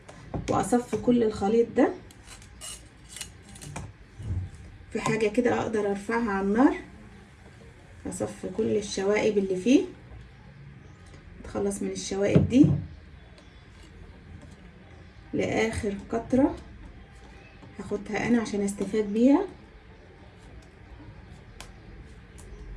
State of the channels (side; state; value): both; identical; correlation 1.00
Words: واصفي كل الخليط ده في حاجه كده اقدر ارفعها على النار. اصفي كل الشوائب اللي فيه، اتخلص من الشوائب دي لاخر قطره هاخدها انا عشان استفاد بيها.